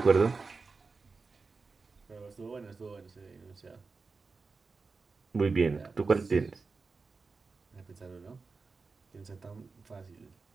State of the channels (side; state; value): left; quieter; 4.3 dB